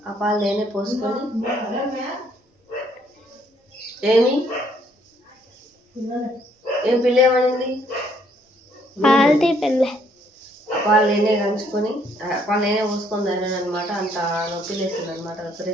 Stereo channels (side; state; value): both; normal; correlation 0.67